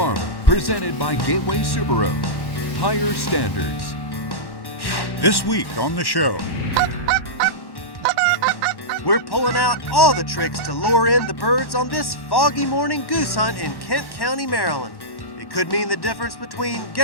presented by Gateway Subaru. Higher standards. This week on the show, we're pulling out all the tricks to lure in the birds on this foggy morning goose hunt in Kent County, Maryland. It could mean the difference between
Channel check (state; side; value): late; right; 1.1 ms